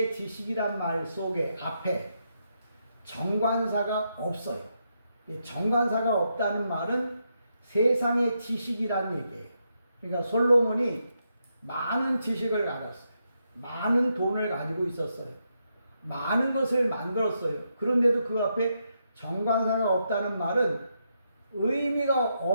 지식이란 말 속에 앞에 정관사가 없어요. 정관사가 없다는 말은 세상의 지식이란 얘기예요. 그러니까 솔로몬이 많은 지식을 가졌어요. 많은 돈을 가지고 있었어요. 많은 것을 만들었어요. 그런데도 그 앞에 정관사가 없다는 말은 의미가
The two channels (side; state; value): both; inverted; correlation -0.82